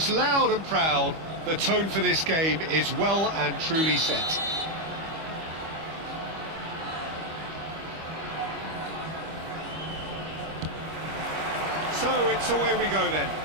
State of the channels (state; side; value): late; left; 25 ms